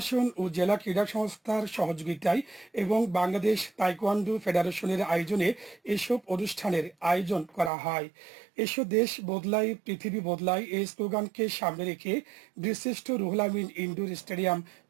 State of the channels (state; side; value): drops out; left; at 7.7 s